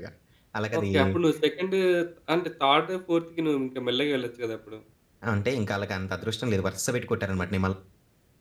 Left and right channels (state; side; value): identical; both; correlation 1.00